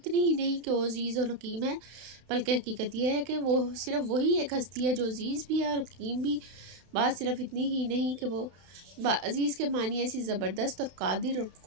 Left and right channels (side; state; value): left; late; 31 ms